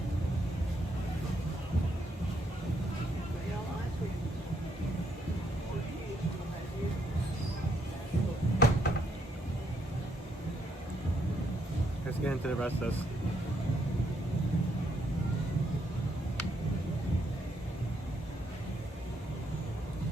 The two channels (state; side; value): normal; both; correlation 0.74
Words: Let's get into the rest of this.